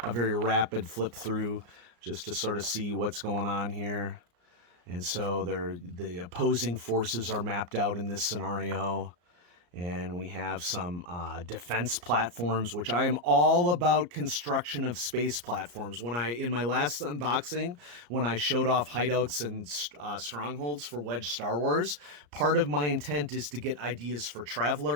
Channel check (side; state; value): left; late; 34 ms